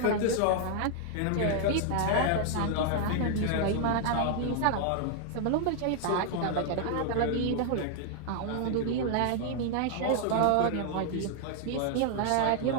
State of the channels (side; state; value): both; different; correlation 0.00